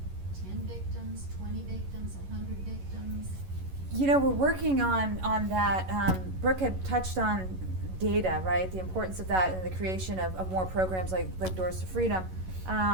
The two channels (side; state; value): left; late; 11 ms